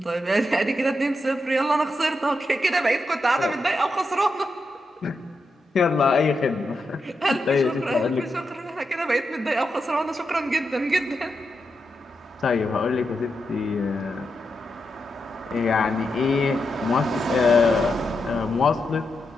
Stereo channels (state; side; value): normal; both; correlation 0.86